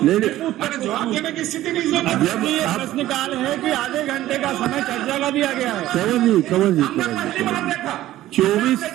नहीं मैंने जवाब देने की स्थिति नहीं है। जब आप प्रश्नकाल है कि आधे घंटे का समय चर्चा का दिया गया है। कंवर जी हमने पहली बार देखा 24 अपने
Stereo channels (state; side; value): quieter; left; 14.6 dB